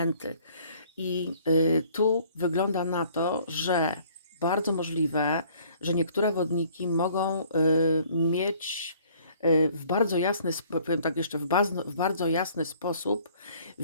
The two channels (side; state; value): both; inverted; correlation -0.58